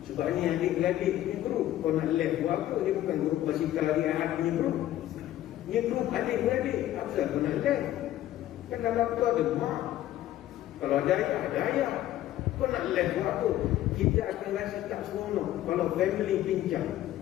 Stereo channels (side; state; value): right; quieter; 13.5 dB